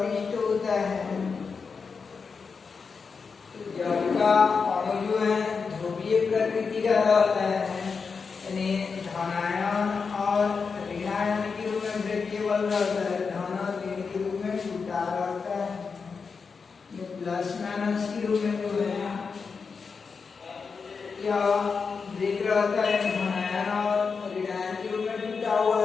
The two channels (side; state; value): right; quieter; 5.2 dB